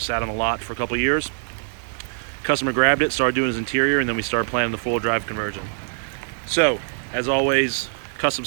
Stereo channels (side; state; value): left; silent; digital silence